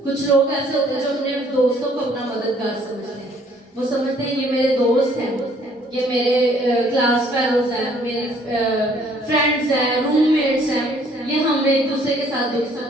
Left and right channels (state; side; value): normal; both; correlation 0.61